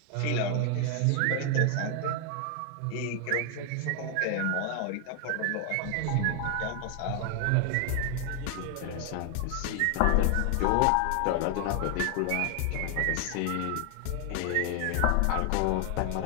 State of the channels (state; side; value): different; both; correlation 0.00